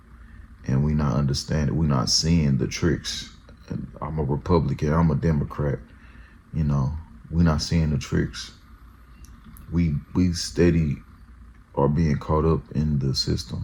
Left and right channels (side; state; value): both; identical; correlation 1.00